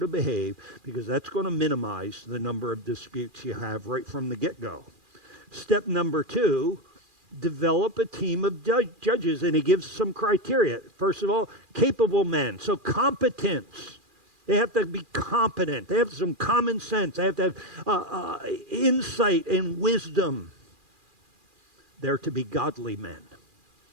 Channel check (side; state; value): left; late; 2.4 ms